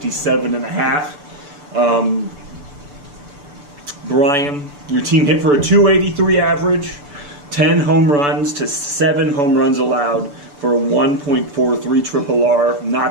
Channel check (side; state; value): left; late; 6.9 ms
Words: and a half. Brian, your team hit for a 283 average, 10 home runs to 7 home runs allowed for a 1.43 triple R.